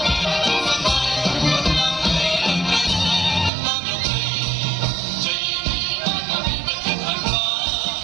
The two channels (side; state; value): left; drops out; at 3.5 s